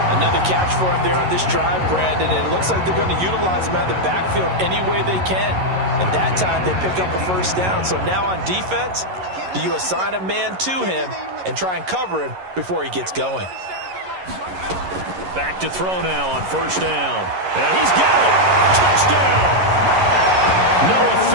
Another catch for him there on this drive, Brandon. And it looks like they're going to utilize him out of the backfield any way they can. And that time they pick up a first down. So now on defense, do you assign a man to him and try and cover him before he gets going? Back to throw now on first down. And he's got it. Touchdown. Noah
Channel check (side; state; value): left; late; 11 ms